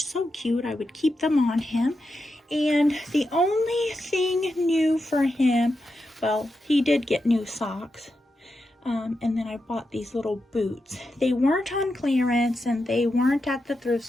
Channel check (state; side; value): normal; both; correlation 0.87